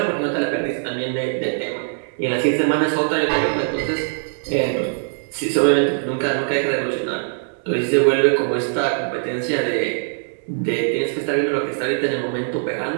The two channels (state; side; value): silent; left; 65 dB below the other